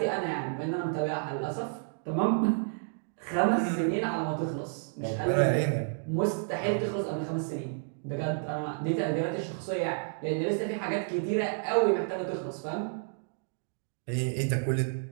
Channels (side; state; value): left; silent; digital silence